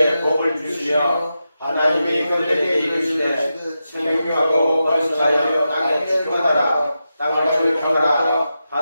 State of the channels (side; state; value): both; inverted; correlation -0.89